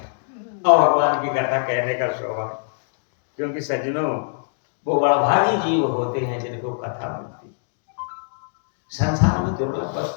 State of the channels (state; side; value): silent; right; digital silence